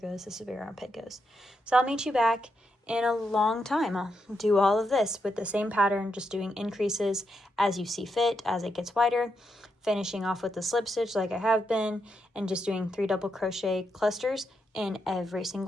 this is where your armpit goes. So I'll meet you back in a long time. I'll do all of this with the same pattern, just doing increases as you see fit, as it gets wider, finishing off with the slip stitch like I have been, and just doing 3 double crochet clusters in every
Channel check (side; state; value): both; normal; correlation 0.82